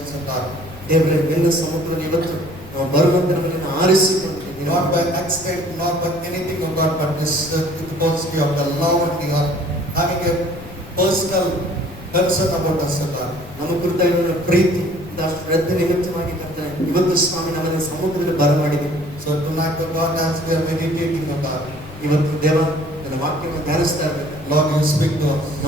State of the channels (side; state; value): left; noise; rumble, 17 dB below the sound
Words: of God. ದೇವರೇ, ನಿನ್ನ ಸಮ್ಮುಖದಲ್ಲಿ ಇವತ್ತು ನಾವು ಬರುವಂತೆ ನಮ್ಮನ್ನು ಆರಿಸಿಕೊಂಡಿದ್ದೀವಿ. Not by accident, not by anything of God, but this because you have the love and you are having a personal concern about us, O God. ನಮ್ಮ ಕುರಿತಾಗಿರುವ ಪ್ರೀತಿ ಶ್ರದ್ಧೆ ನಿಮಿತ್ತವಾಗಿ ಕರ್ತನೆ ಇವತ್ತು ಸ್ವಾಮಿ ನಮ್ಮನ್ನು ಸಮ್ಮುಖದಲ್ಲಿ ಬರಮಾಡಿದ್ದೀವಿ. So tonight, O God, as we are meditating, O God, ಇವತ್ತು ದೇವ ನನ್ನ ವಾಕ್ಯವನ್ನು ಧ್ಯಾನಿಸ್ತಾ ಇರಬೇಕು. Lord, you speak to us.